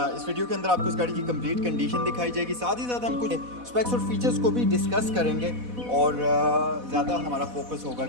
इस वीडियो के अंदर आपको इस गाड़ी की कंप्लीट कंडीशन दिखाई जाएगी। साथ ही साथ हम कुछ स्पेक्स और फीचर्स को भी डिस्कस करेंगे और ज़्यादा हमारा फोकस होगा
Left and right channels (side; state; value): left; late; 4.1 ms